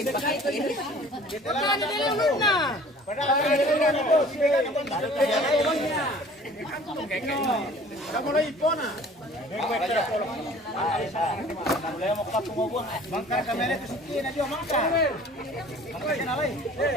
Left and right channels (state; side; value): normal; both; correlation 0.49